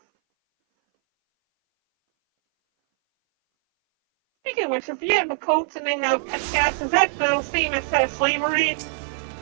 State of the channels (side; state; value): left; silent; 59 dB below the other